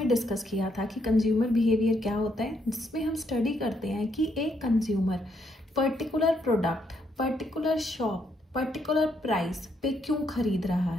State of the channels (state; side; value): normal; both; correlation 0.75